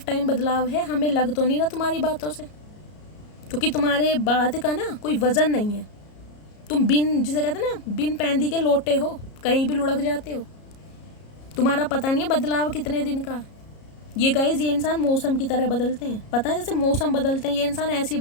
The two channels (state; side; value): late; right; 33 ms